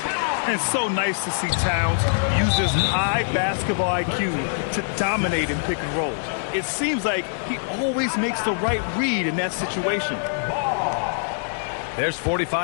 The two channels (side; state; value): right; silent; digital silence